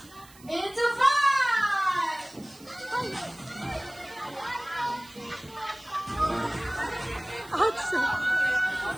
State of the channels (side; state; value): right; noise; hiss, 23 dB below the sound